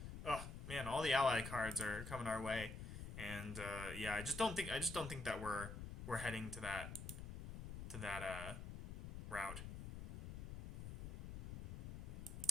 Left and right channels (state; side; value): noise; left; rumble, 7 dB below the sound